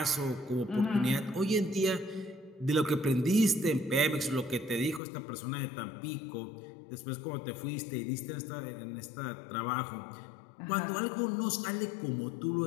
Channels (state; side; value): drops out; right; at 5.0 s